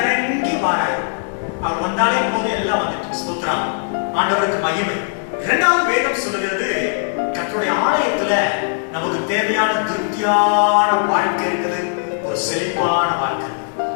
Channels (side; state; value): right; silent; digital silence